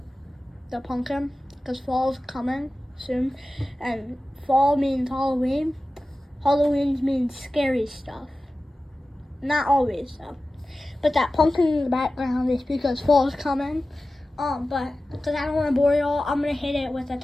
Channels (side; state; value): both; normal; correlation 0.95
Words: the pumpkin because fall's coming soon, and fall means Halloween. Halloween means scary stuff. Not always though. But that pumpkin in the background is because fall's coming. But because I don't want to bore y'all, I'm gonna hit it with a